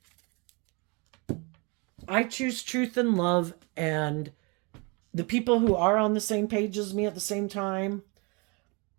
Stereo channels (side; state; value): left; quieter; 30.3 dB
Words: I choose truth and love, and the people who are on the same page as me at the same time